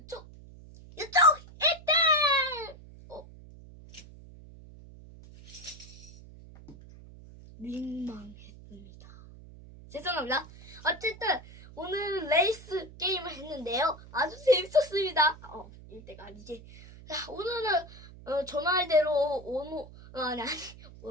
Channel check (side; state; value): right; noise; hum, 19 dB below the sound